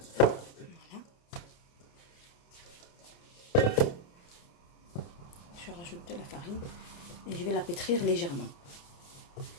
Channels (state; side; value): late; right; 29 ms